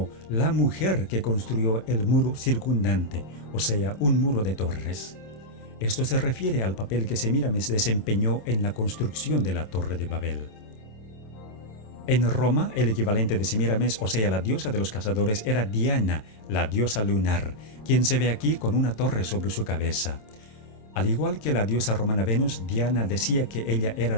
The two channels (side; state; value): right; late; 27 ms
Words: la mujer que construyó el muro circundante, o sea, un muro de torres. Esto se refiere al papel que Semíramis desempeñó en la construcción de la Torre de Babel. En Roma, el equivalente de Semíramis, o sea, la diosa de los cazadores, era Diana, la diosa lunar, quien se ve aquí con una torre sobre su cabeza. Al igual que la diosa romana Venus, Diana decía que ella era